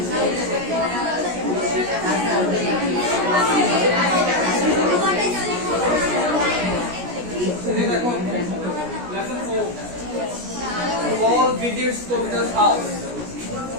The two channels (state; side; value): late; left; 17 ms